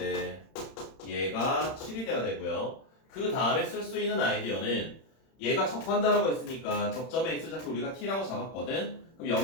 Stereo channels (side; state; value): right; late; 31 ms